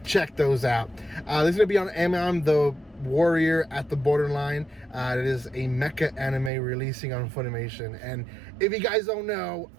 check those out. This is going to be on AMAIM, the warrior at the borderline. It is a mecha anime releasing on Funimation. And if you guys don't know,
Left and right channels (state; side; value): drops out; left; at 6.5 s